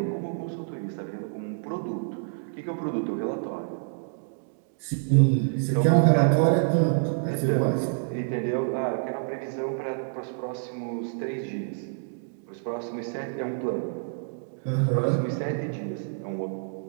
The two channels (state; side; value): silent; left; digital silence